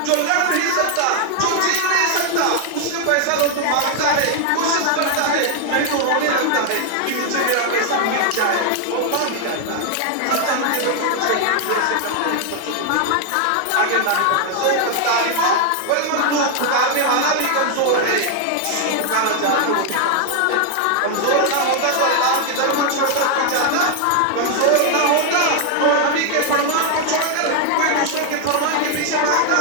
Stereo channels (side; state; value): both; different; correlation 0.00